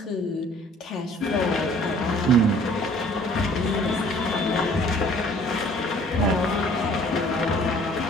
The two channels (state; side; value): normal; both; correlation 0.54